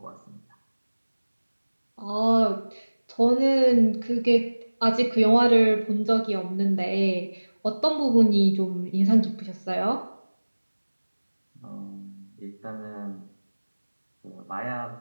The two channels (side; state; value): both; inverted; correlation -1.00